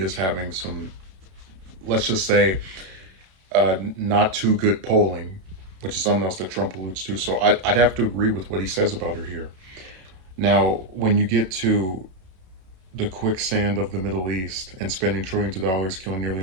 having some, let's just say, not too good polling, which is something else that Trump alludes to. So I'd have to agree with what he says about her here. Now, when you get to the quicksand of the Middle East and spending trillions of dollars, killing nearly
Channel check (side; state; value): left; late; 32 ms